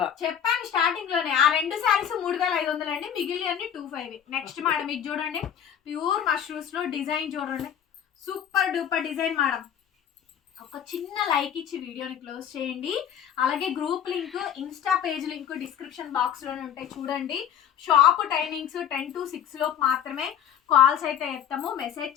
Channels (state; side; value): quieter; right; 9.2 dB